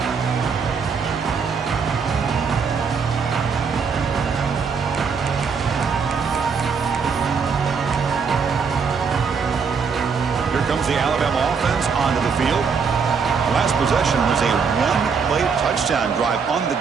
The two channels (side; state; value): left; quieter; 5.7 dB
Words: comes the Alabama offense onto the field. Last possession was a one-play touchdown drive on the